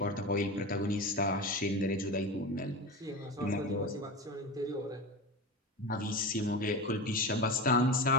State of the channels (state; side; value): normal; both; correlation 0.25